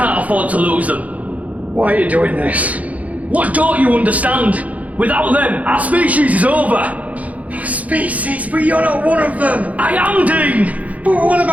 afford to lose them. Why are you doing this? What don't you understand? Without them, our species is over. Species? But you're not one of them. I am, Dean. But what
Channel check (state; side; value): late; left; 0.071 ms